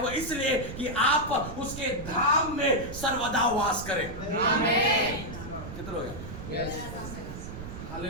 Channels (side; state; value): right; noise; rumble, 10 dB below the sound